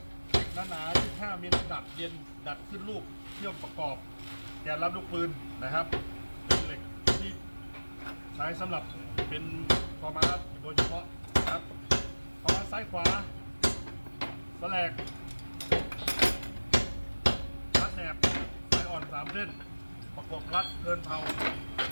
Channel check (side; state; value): both; inverted; correlation -1.00